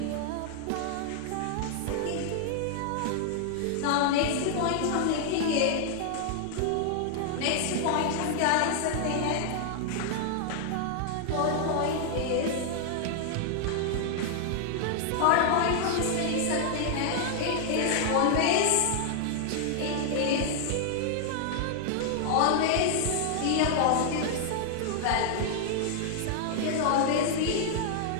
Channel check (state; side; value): different; both; correlation 0.00